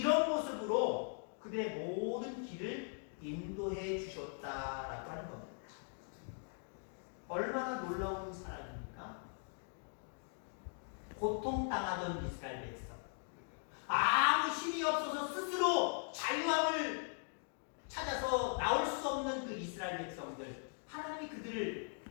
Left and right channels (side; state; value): right; silent; 51 dB below the other